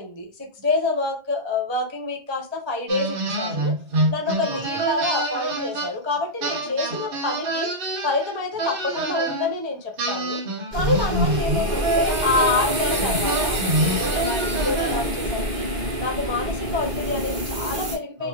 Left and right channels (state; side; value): late; left; 2.1 ms